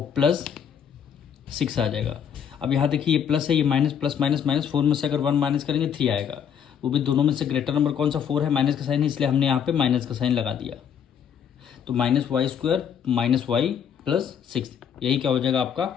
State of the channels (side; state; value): right; quieter; 8.1 dB